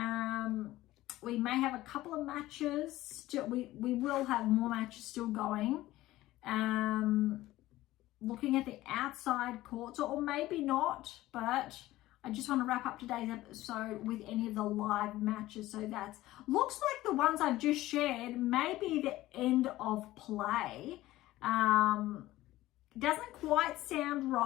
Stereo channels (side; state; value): right; quieter; 16.4 dB